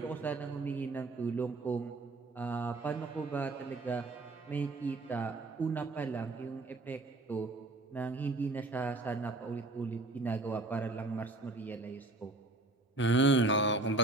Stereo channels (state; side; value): quieter; left; 3.0 dB